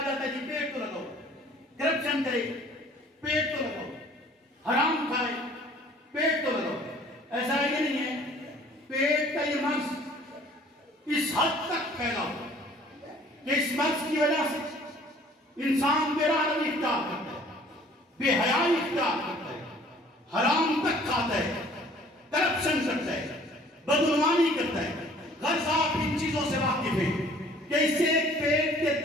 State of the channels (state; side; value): normal; both; correlation 0.54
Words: جاتا ہے جی پیٹ تو لگاؤ. کرپشن کرے، پیٹ تو لگاؤ. حرام کھائے، پیٹ تو لگاؤ. ایسا یہ نہیں ہے. پیٹ کا یہ مرض اس حد تک پھیلا ہوا کہ اس مرض کی وجہ سے انسان بے رحمی اختیار کرتا ہے، بے حیائی اختیار کرتا ہے، حرام تک کھاتا ہے، کرپشن کرتا ہے، بدعنوانی کرتا ہے. غرض آپ ان چیزوں سے واقف ہیں کہ اسے پیٹ کے